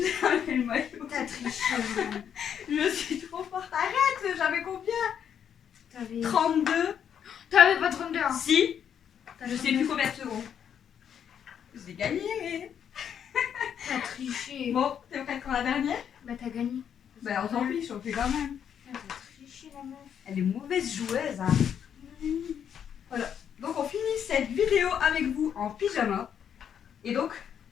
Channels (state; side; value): quieter; right; 8.5 dB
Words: enlevé le maillot. T'as triché. Je suis trop forte. Arrête, j'avais combien? T'avais 32. T'avais pas 32 ans. Si. T'as Je sais plus combien de secondes. J'ai gagné. T'as triché. Bon, t'es prête pour la dernière? Bah t'as gagné. Ben on s'en fiche, on fait quand même. T'as triché la meuf. Elle est mauvaise joueuse, hein. Voilà. Donc on finit cette vidéo avec vous en pyjama. Et donc,